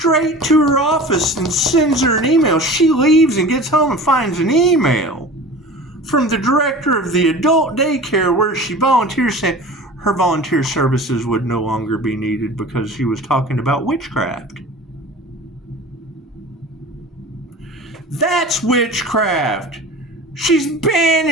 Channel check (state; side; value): normal; both; correlation 0.38